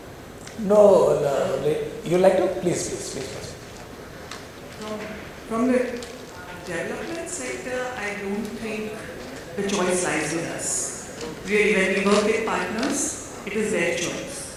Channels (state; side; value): identical; both; correlation 1.00